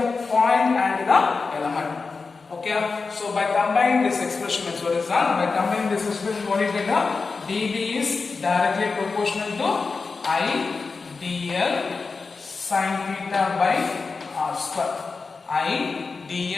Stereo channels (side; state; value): right; quieter; 4.4 dB